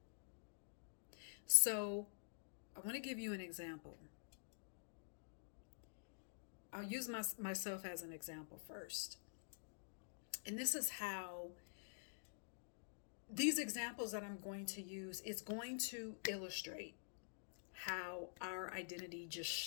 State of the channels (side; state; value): right; silent; digital silence